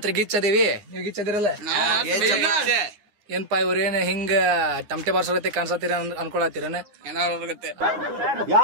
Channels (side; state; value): left; late; 9.7 ms